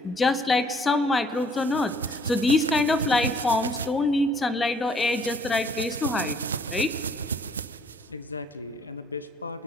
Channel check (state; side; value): normal; both; correlation 0.61